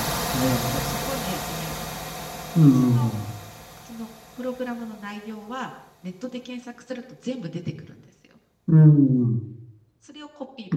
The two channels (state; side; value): identical; both; correlation 1.00